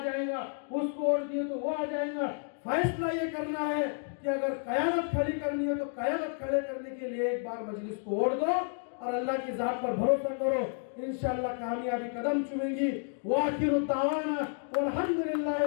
उसको वोट दिए तो वो आ जाएगा। फैसला ये करना है कि अगर कयादत खड़ी करनी है तो कयादत खड़े करने के लिए एक बार मजलिस को वोट दो और अल्लाह की जात पर भरोसा करो। इंशाअल्लाह कामयाबी कदम चुमेंगी। वाखिरु दावाना वल्हम्दुलिल्लाहि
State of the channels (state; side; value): silent; right; 57 dB below the other